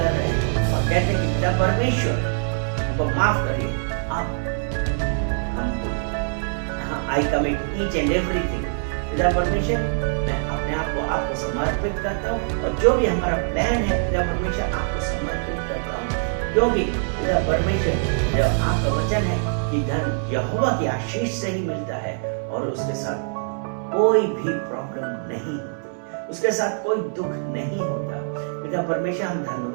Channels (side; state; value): left; silent; 63 dB below the other